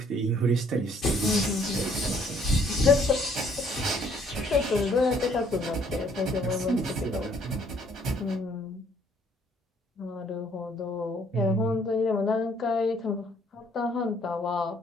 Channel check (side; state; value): both; normal; correlation 0.63